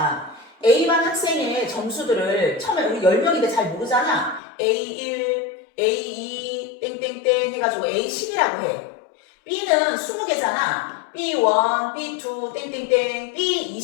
A반 학생의 점수들을 처음에 우리 10명인데 잘 모르잖아. A1, A2, 땡땡땡 해가지고 A10이라고 해. B는 20개잖아. B1, B2, 땡땡땡,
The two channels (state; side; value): drops out; right; at 4.4 s